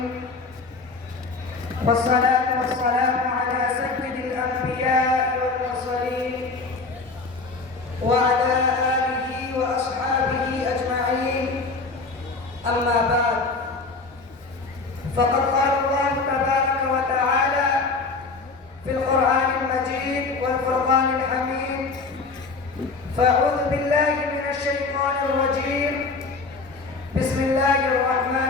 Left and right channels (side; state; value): right; quieter; 4.0 dB